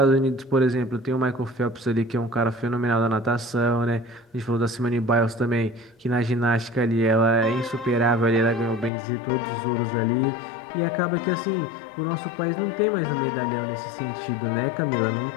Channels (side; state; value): right; drops out; at 8.9 s